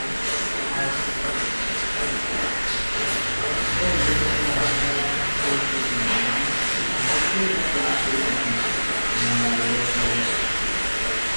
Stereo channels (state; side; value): inverted; both; correlation -1.00